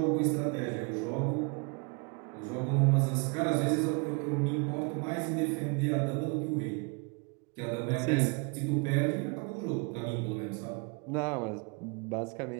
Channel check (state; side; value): quieter; left; 33.4 dB